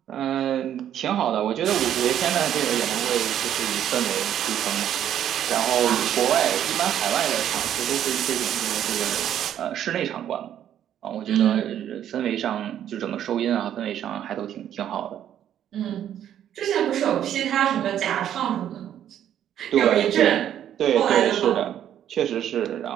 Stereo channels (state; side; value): quieter; left; 10.5 dB